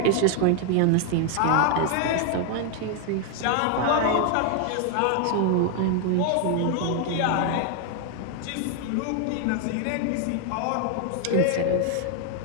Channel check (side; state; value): both; different; correlation 0.00